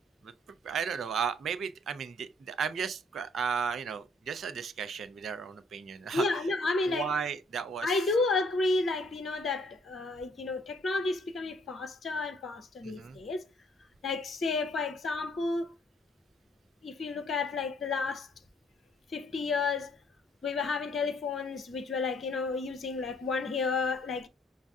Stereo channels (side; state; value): both; normal; correlation 0.63